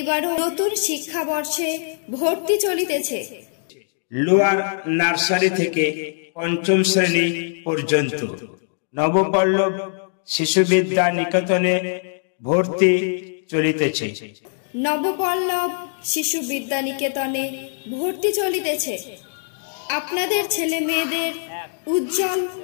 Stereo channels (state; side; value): silent; right; digital silence